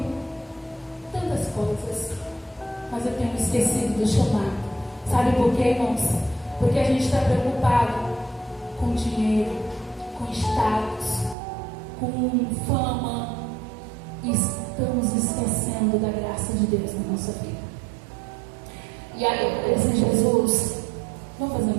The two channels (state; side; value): drops out; left; at 11.4 s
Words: tantas coisas, mas eu tenho esquecido do chamado. Sabe por quê, irmãos? Porque a gente está preocupado com dinheiro, com status, com fama, e estamos esquecendo da graça de Deus na nossa vida. E aí eu falei assim, Jesus, vamos fazer